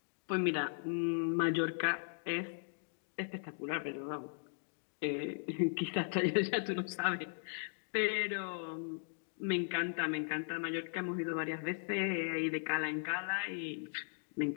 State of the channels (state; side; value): silent; right; digital silence